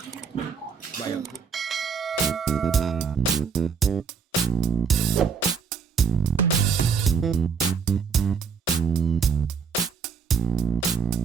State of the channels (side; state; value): left; quieter; 6.0 dB